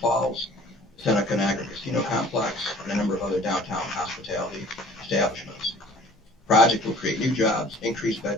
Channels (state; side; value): normal; both; correlation 0.50